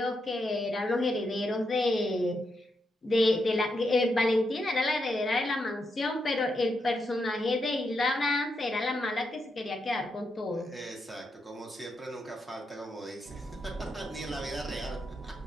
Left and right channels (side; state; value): both; normal; correlation 0.83